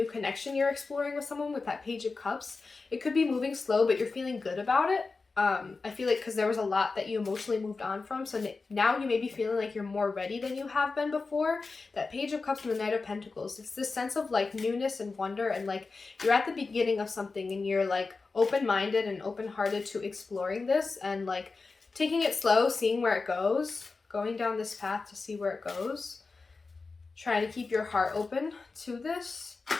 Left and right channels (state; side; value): quieter; right; 4.1 dB